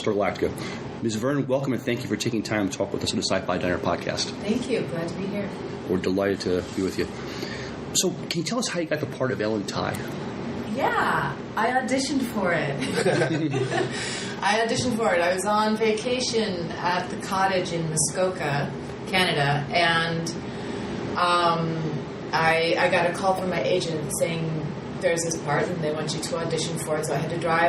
Galactica. Ms. Vernon, welcome, and thank you for taking time to talk with us on the Sci-Fi Diner podcast. Thank you. Glad to be here. We're delighted to be with you. So, can you tell us how you got the part of Ellen Tigh? Yeah, I auditioned for it. I was on vacation at the cottage in Muskoka, Canada, and I got a call from my agent saying there's this part and they want you to audition for it. So I had to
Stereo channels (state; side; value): identical; both; correlation 1.00